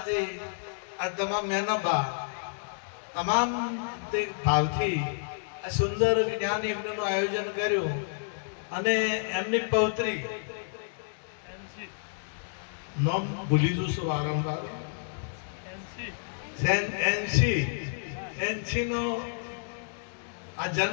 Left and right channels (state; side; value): silent; right; digital silence